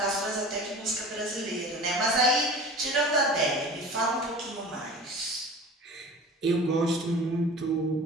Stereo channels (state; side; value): normal; both; correlation 0.39